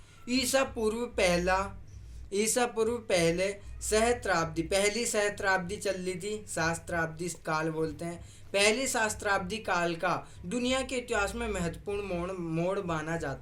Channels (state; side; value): identical; both; correlation 1.00